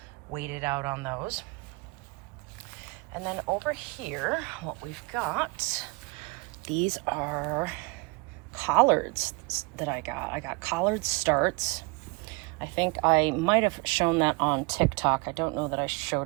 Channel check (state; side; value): quieter; left; 27.3 dB